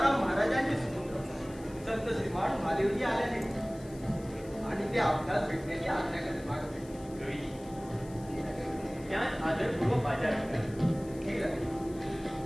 महाराजांचे सुपुत्र संत श्रीमान महादेवजी आल्याने आणि ते आपल्याला भेटण्याची आज्ञा करत मागत. त्यात आदरपूर्वक बाजार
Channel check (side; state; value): left; noise; hiss, 22 dB below the sound